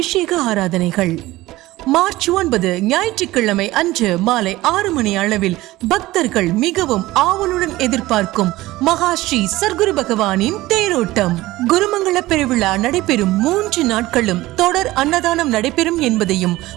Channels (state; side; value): quieter; left; 17.9 dB